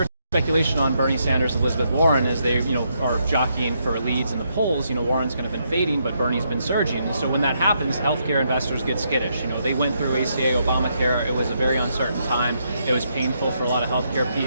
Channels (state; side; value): inverted; both; correlation -0.77